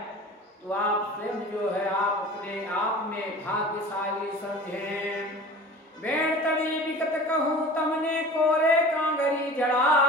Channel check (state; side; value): normal; both; correlation 0.39